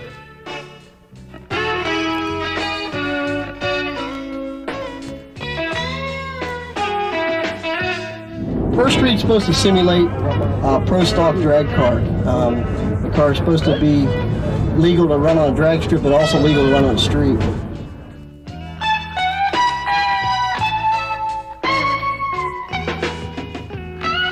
Pro Street's supposed to simulate a pro stock drag car. The car is supposed to be legal to run on a drag strip, but also legal to run on the street.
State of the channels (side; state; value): both; identical; correlation 1.00